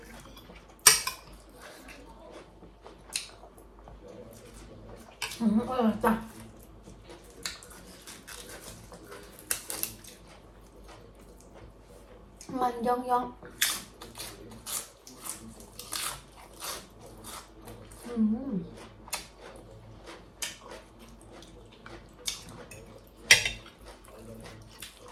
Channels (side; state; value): both; identical; correlation 1.00